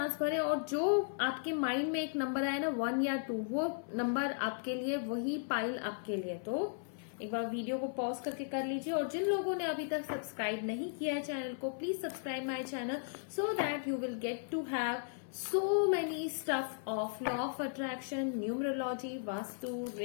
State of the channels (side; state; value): right; silent; 54 dB below the other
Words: भरें, और जो आपके माइंड में एक नंबर आए ना 1 या 2, वो नंबर आपके लिए, वही पाइल आपके लिए। तो एक बार वीडियो को पॉज करके कर लीजिए, और जिन लोगों ने अभी तक सब्सक्राइब नहीं किया है चैनल को, please subscribe my channel so that you will get to have so many stuff of law of attraction, numerology, vastu,